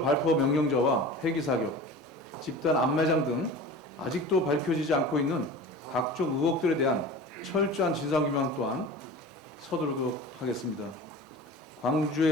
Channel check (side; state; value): both; normal; correlation 0.36